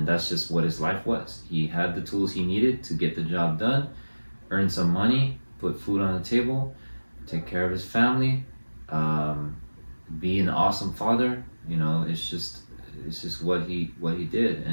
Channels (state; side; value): inverted; both; correlation -1.00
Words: that's just what his life was. He had the tools he needed to get the job done, earn some money, put food on the table, take care of his family, be an awesome father. You know, it's just what he did.